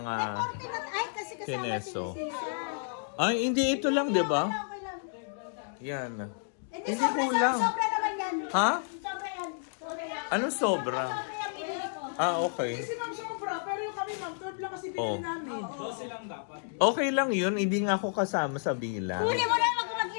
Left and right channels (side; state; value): right; silent; digital silence